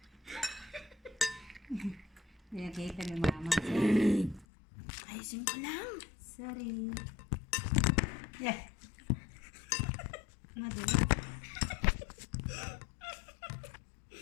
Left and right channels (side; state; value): right; drops out; at 4.5 s